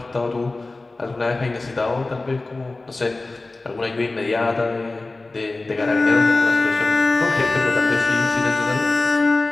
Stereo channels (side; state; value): right; quieter; 3.2 dB